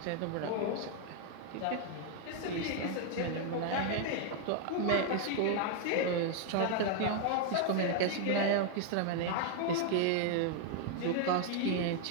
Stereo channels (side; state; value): both; different; correlation 0.00